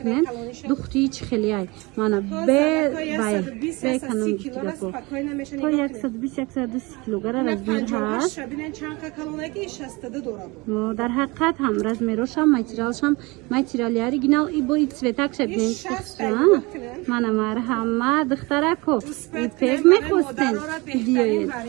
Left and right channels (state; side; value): quieter; left; 24.8 dB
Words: دختری چه خیلی ای مانا به کنم دیگه تا 120 120 کیلوگرم از بین هست در حقیقت هم رزمیروش هم ماتریالی اوریجینال ای با цветак شبین مانا مرحمت دخترکو ایپک میخواستن دیوید